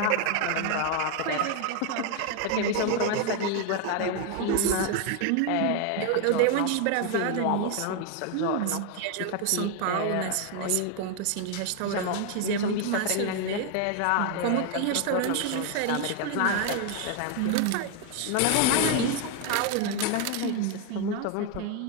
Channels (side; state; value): both; different; correlation 0.01